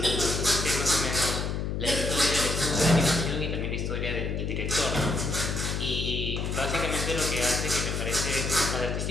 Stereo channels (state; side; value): noise; left; hum, 2 dB below the sound